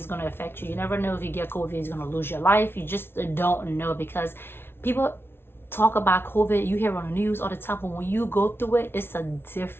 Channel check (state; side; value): late; right; 0.11 ms